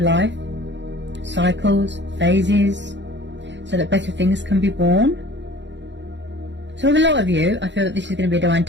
Cycles, phases, so that better things can be born. So with a lot of you, I feel that this is going to be a divine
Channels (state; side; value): late; left; 0.52 ms